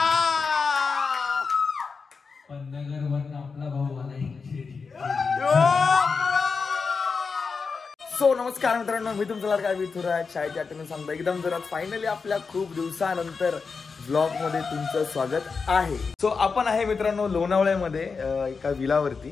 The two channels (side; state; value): right; quieter; 5.0 dB